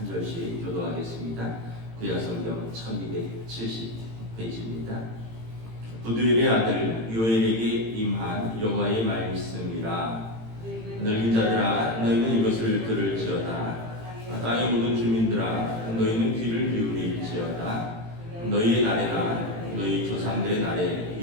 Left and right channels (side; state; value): left; late; 18 ms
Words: 절씩 교도하겠습니다. 구약 성경 1270 페이지입니다. 부두엘의 아들 요엘에게 임한 여호와의 말씀이라. 늙은 자들아 너희는 이것을 들을지어다. 땅의 모든 주민들아 너희는 귀를 기울일지어다. 너희의 날에나 너희 조상들의 날에